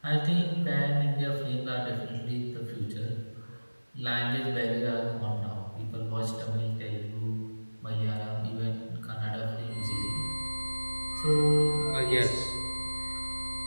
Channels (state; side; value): inverted; both; correlation -1.00